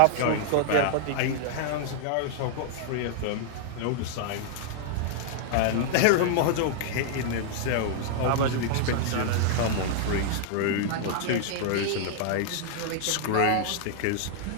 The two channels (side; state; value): both; different; correlation -0.01